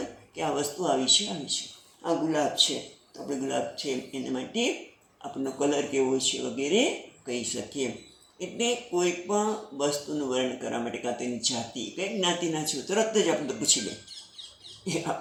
કે આ વસ્તુ આવી છે. આ ગુલાબ છે તો આપણે ગુલાબ છે એના માટે આપણનો કલર કેવો છે વગેરે કહી શકીએ. એટલે કોઈ પણ વસ્તુનું વર્ણન કરવા માટે કાં તો એની જાતિ, કઈ જ્ઞાતિના છો તરત જ આપણે પૂછી લે. એ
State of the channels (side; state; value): both; identical; correlation 1.00